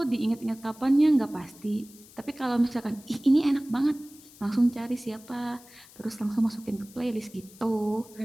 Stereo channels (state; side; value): noise; left; hiss, 22 dB below the sound